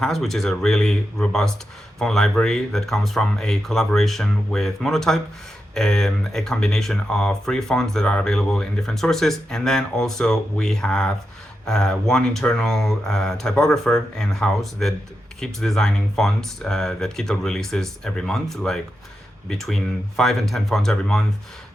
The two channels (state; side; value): normal; both; correlation 0.88